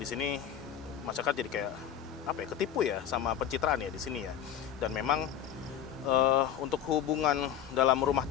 sini masyarakat jadi kayak ketipu ya sama pencitraan ya di sini ya. Dan memang untuk hubungan dalam rumah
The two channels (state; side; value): quieter; right; 9.6 dB